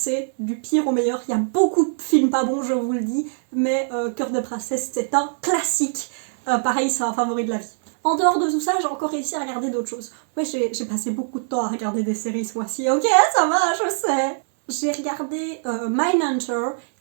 du pire au meilleur. Il y a beaucoup de films pas bons, je vous le dis, mais Cœur de Princesse c'est un classique. Pareil, c'est un favori de la vie. En dehors de tout ça, j'ai encore réussi à regarder d'autres choses. Ouais, j'ai passé beaucoup de temps à regarder des séries ce mois-ci. Ok, ça va, je sais. J'ai regardé Mindhunter,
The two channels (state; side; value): silent; left; 64 dB below the other